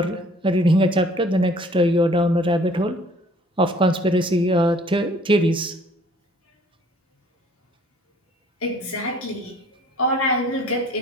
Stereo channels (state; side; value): normal; both; correlation 0.56